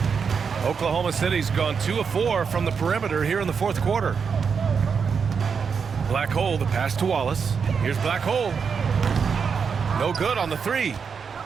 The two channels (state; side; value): quieter; left; 6.1 dB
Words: Oklahoma City's gone 2 of 4 from the perimeter here in the fourth quarter. Black Hole, the pass to Wallace. Here's Black Hole. No good on the 3.